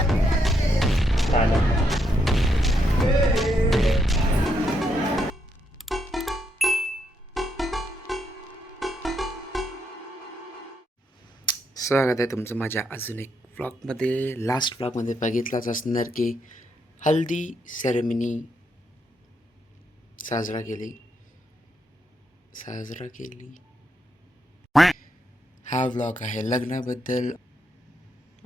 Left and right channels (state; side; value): normal; both; correlation 0.78